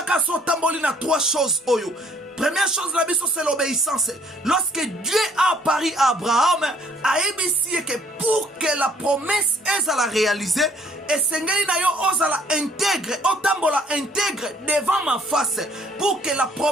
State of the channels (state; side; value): normal; both; correlation 0.61